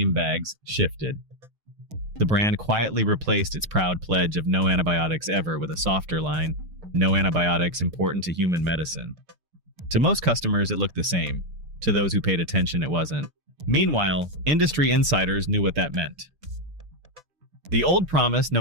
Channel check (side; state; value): left; late; 6.6 ms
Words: bags shifted. The brand quietly replaced its proud pledge of no antibiotics ever with a softer line: no antibiotics important to human medicine. To most customers, it looked the same. To those who paid attention, it wasn't. Meanwhile, industry insiders knew what that meant. The old promise,